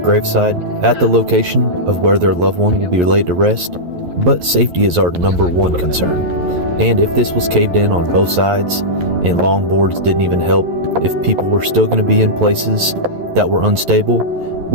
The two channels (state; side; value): late; left; 11 ms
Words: at the location of where their loved one will be laid to rest, but safety is our number one concern. And if this was caved in on both sides and long boards didn't even help, if people were still going to be in places that were unstable,